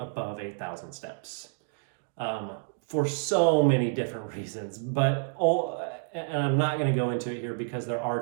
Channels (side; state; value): left; silent; digital silence